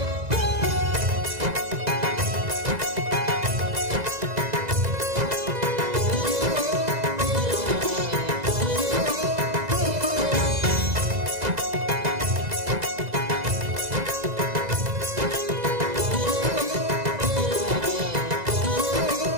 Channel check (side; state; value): left; late; 2.0 ms